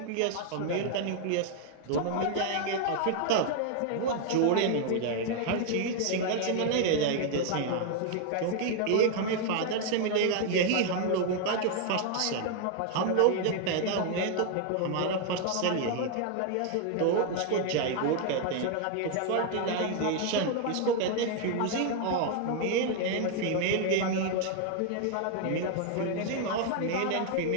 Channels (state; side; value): different; both; correlation 0.00